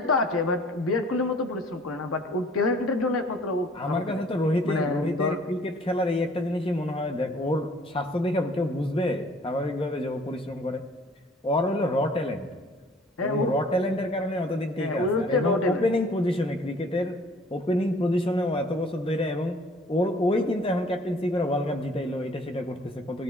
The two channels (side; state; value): both; normal; correlation 0.54